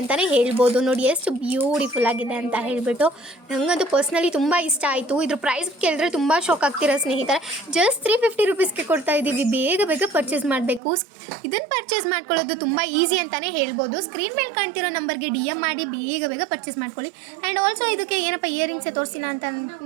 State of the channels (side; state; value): left; drops out; at 10.8 s